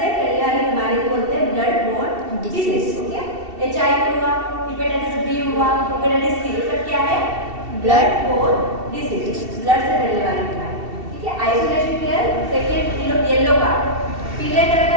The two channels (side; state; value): left; late; 2.7 ms